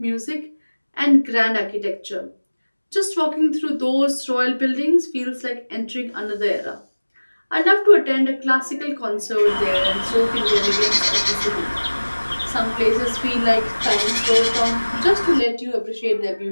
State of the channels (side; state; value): both; inverted; correlation -1.00